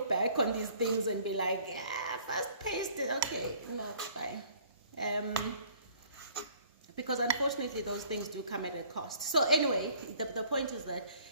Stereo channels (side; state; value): both; inverted; correlation -0.56